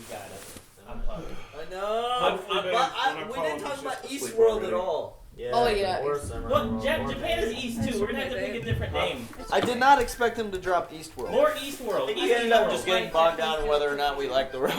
got it. I'm pumped. I know. We didn't talk about Eastworld at all. Yeah, Oh, yeah. Well, Japan is East too. We're gonna have to pick a different name. I did not expect him to drop Eastworld. More Eastworld. We ended up just getting bogged down in whether or not we like the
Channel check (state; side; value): identical; both; correlation 1.00